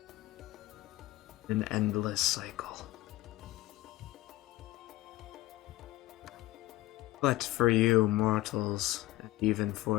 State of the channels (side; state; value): right; quieter; 17.5 dB